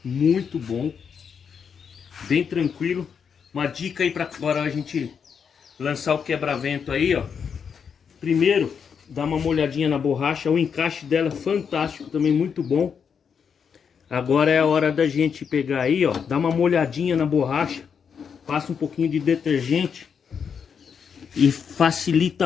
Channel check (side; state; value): right; quieter; 6.8 dB